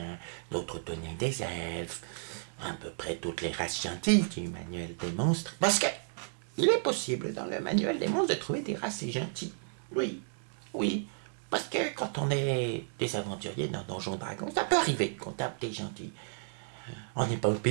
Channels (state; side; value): silent; left; digital silence